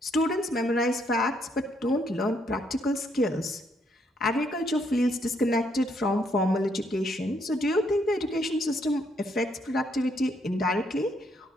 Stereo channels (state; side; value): normal; both; correlation 0.72